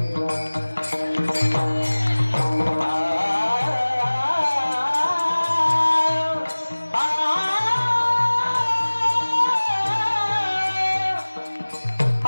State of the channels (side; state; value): both; inverted; correlation -1.00